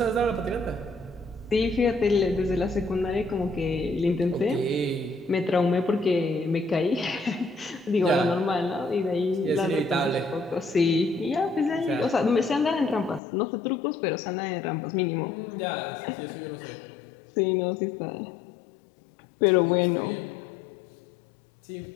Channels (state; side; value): drops out; right; at 13.2 s